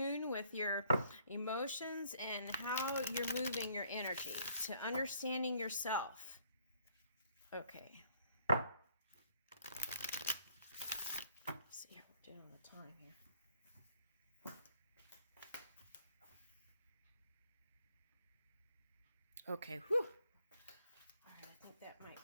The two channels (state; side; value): inverted; both; correlation -0.64